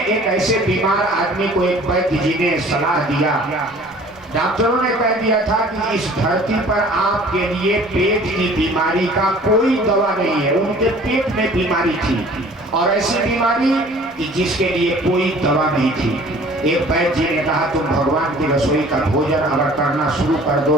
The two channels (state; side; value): normal; both; correlation 0.50